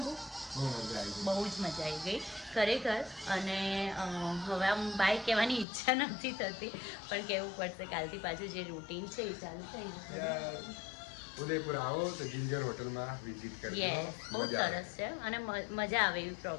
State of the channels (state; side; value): drops out; right; at 5.7 s